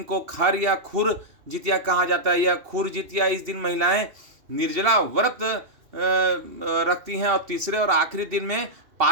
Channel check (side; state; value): left; late; 2.7 ms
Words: को खर या खुर जितिया कहा जाता है। यह खुर जितिया, इस दिन महिलाएं निर्जला व्रत रखती हैं। और तीसरे और आखिरी दिन में